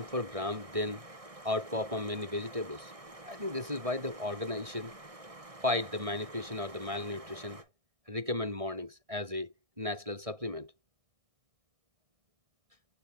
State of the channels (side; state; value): left; late; 1.6 ms